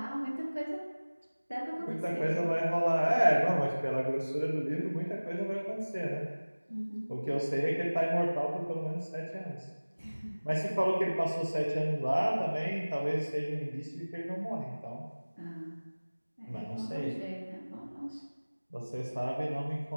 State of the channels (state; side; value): inverted; both; correlation -1.00